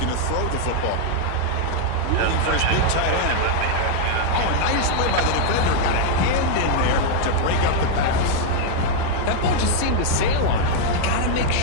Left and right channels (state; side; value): different; both; correlation 0.00